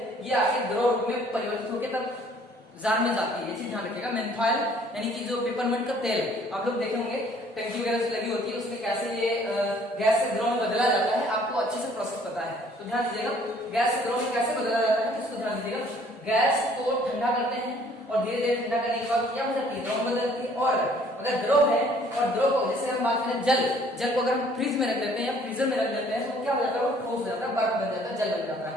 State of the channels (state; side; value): normal; both; correlation 0.58